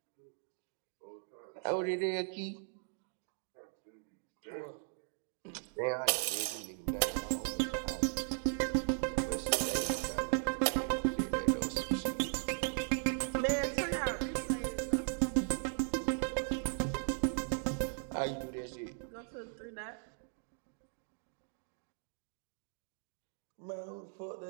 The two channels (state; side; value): silent; left; digital silence